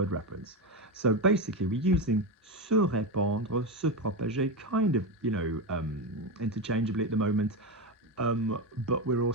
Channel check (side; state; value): both; normal; correlation 0.13